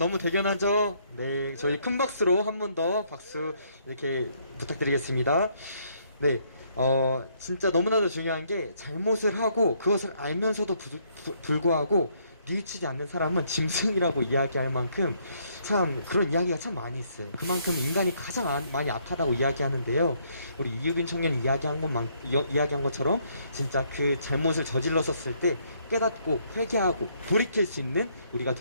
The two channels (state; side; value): inverted; both; correlation -0.70